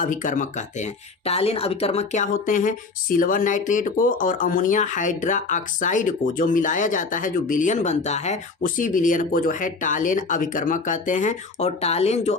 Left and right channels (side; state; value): right; quieter; 4.1 dB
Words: कहते हैं। टालेन अभिकर्मक क्या होते हैं, सिल्वर नाइट्रेट को और अमोनिया हाइड्रोक्साइड को जो मिलाया जाता है, जो विलयन बनता है, उसी विलयन को जो है टालेन अभिकर्मक कहते हैं। और टालेन जो